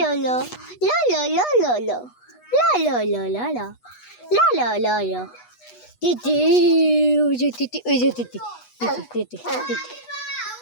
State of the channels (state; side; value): late; right; 8.2 ms